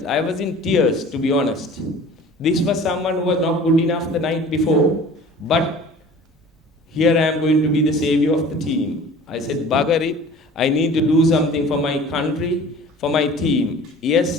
I was in tears, to be honest. This was someone who was not good enough the night before, but here I am going to be the savior of the team. I said, bugger it, I need to do something for my country, for my team.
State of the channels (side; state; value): both; normal; correlation 0.44